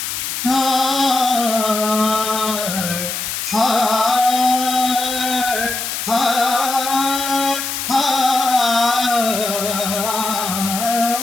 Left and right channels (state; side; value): noise; left; hiss, 4 dB below the sound